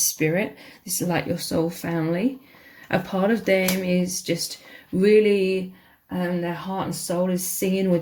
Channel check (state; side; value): identical; both; correlation 1.00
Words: This is like your soul family. A part of them is just really, their heart and soul is singing